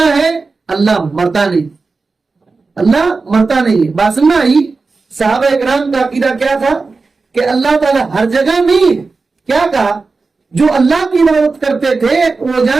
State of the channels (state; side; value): quieter; left; 4.1 dB